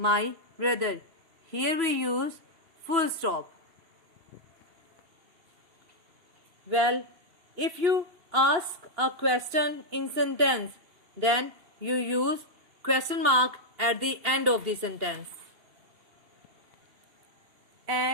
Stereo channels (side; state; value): left; late; 2.7 ms